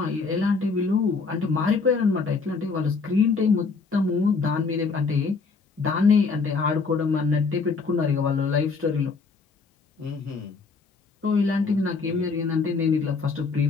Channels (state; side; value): quieter; right; 4.6 dB